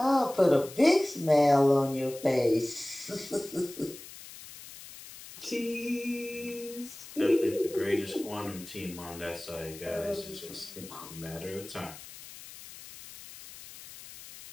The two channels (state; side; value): noise; left; hiss, 16 dB below the sound